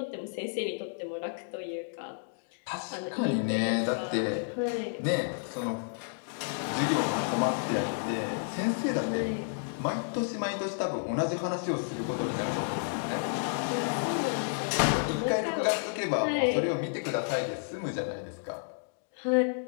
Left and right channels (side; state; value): right; silent; digital silence